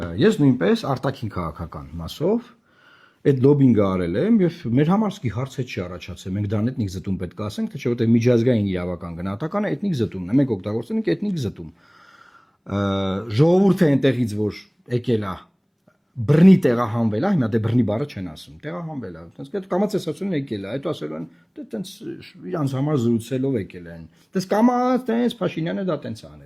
ես նույնպես արտաքին քաղաքական մասով այդ լոբինգը արել եմ եւ մեր համար սկի հարց է չի առաջացել։ Մենք դրան էթնիկ զտում պետք է ասենք, թե չէ, որտեղ միջազգային իրավական գնահատականը էթնիկ զտումն է։ Մենք օգտագործում ենք էթնիկ զտում։ Ժողովուրդը այնտեղից որ եկել է բռնի տեղահանվել է, հիմա դե բռնի բառը չեն ասում, տեղահանվել է։ Այդպես այդ կամացեսացումն եկել է, հետո ասելու են, դե տենց իրանց համար զրուցելով եկել են։ Դες կամաց տենց Փաշինյանը դա տենց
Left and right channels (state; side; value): identical; both; correlation 1.00